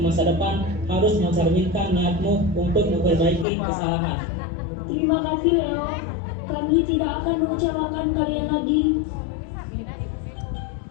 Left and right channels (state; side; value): drops out; right; at 3.5 s